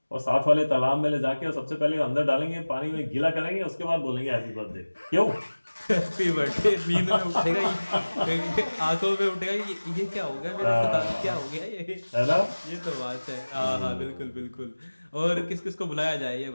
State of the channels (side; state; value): both; inverted; correlation -1.00